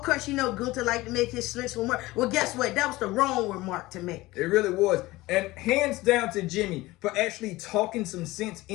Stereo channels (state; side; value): quieter; right; 19.3 dB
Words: course, you know, Gunther liked to make his slips remark. Well, guess what? That was the wrong remark to make. It really was. And hands down to Jimmy for actually talking some sense